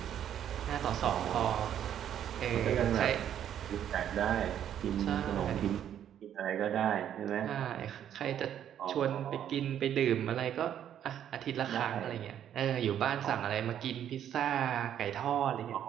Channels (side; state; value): left; quieter; 10.0 dB